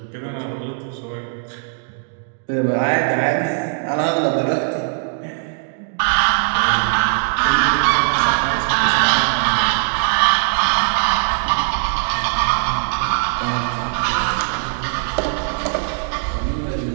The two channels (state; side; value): silent; left; 63 dB below the other